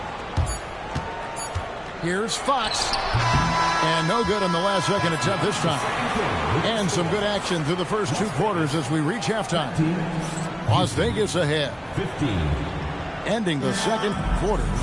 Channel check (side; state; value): both; identical; correlation 1.00